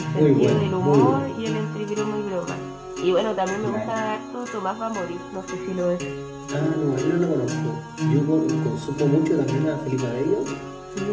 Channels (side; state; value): both; identical; correlation 1.00